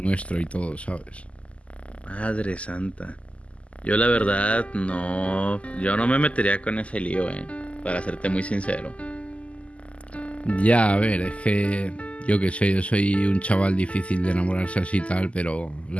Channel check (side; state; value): right; late; 0.061 ms